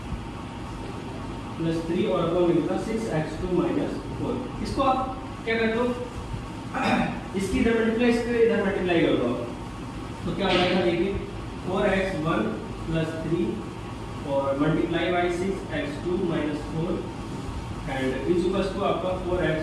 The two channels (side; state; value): both; identical; correlation 1.00